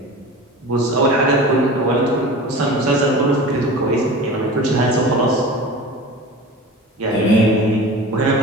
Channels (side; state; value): both; normal; correlation 0.35